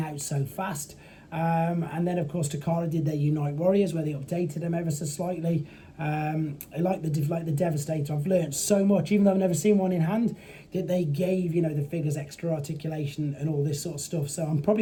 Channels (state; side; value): identical; both; correlation 1.00